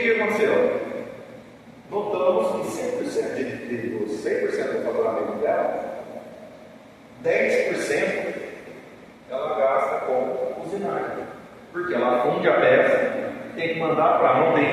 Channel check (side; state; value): both; identical; correlation 1.00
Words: que aconteceu? Notamos que 100% dos 100% do faturamento dela, 10% ela gasta com usinagem. Porque ela funde a peça, tem que mandar para, não